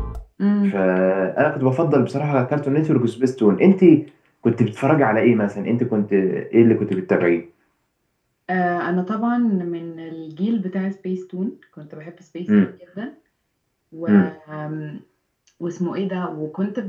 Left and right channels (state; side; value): identical; both; correlation 1.00